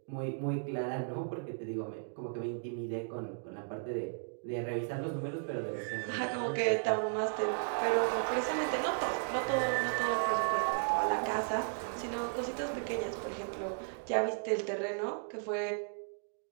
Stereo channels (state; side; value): silent; left; digital silence